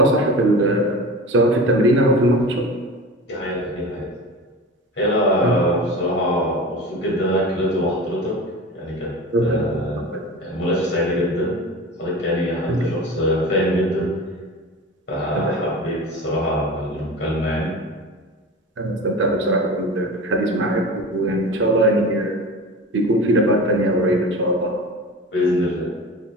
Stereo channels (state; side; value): normal; both; correlation 0.33